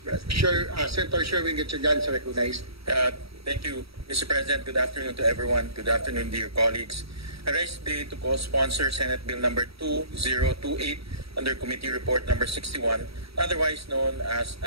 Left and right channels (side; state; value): left; late; 0.77 ms